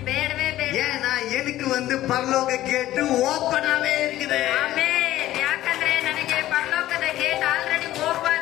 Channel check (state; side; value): quieter; right; 14.5 dB